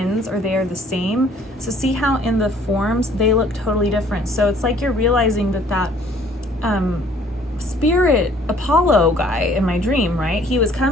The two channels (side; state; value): both; normal; correlation 0.58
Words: or they are the same. So see how in the forms they look totally different. So it's like you're realizing that spirit Apollo guy in my dream, right? He was